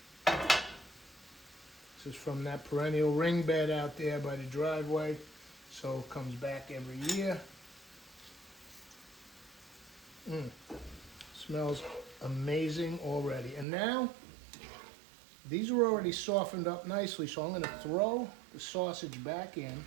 This is from that perennial ring bed out there by the driveway, so it comes back every year. Smells amazing already. And now, these are already softened up nicely, so I'm going to throw the sausage back in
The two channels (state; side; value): drops out; left; at 13.7 s